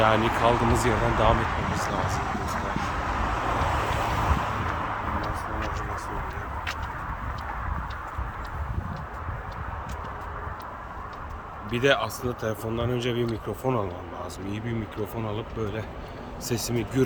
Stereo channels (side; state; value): both; identical; correlation 1.00